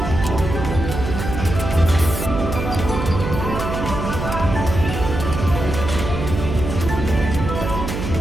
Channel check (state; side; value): noise; right; hum, 5 dB below the sound